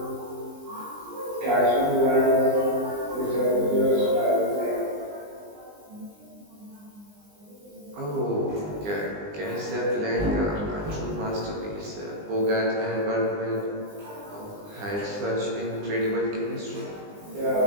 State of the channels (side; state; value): left; late; 20 ms